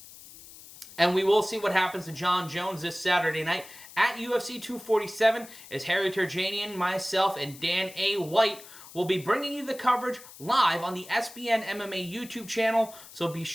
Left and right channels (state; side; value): noise; left; hiss, 18 dB below the sound